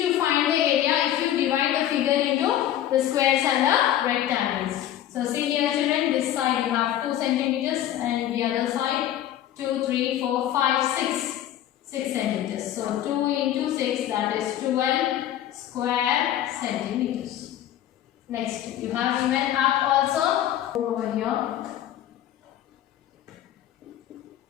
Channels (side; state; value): right; quieter; 12.0 dB